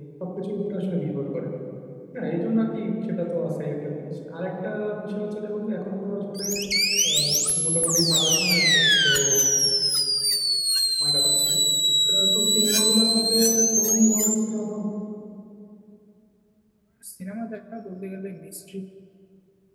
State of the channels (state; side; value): identical; both; correlation 1.00